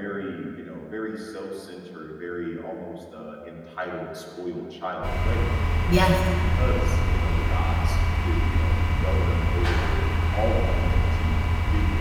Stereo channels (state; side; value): identical; both; correlation 1.00